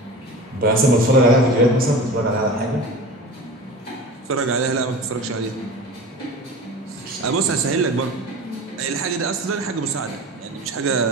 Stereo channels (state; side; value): normal; both; correlation 0.35